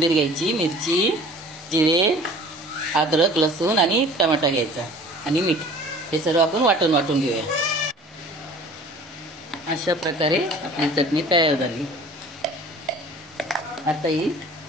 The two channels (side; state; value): both; normal; correlation 0.46